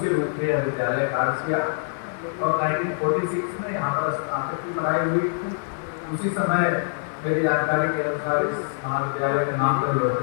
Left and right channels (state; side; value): silent; right; digital silence